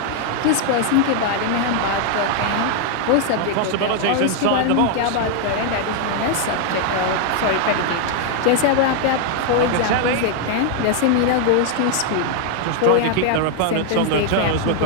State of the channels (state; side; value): different; both; correlation 0.00